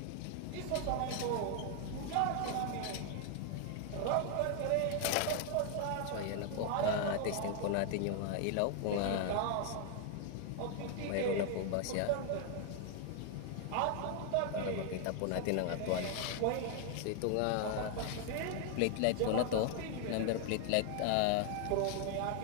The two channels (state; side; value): different; both; correlation 0.00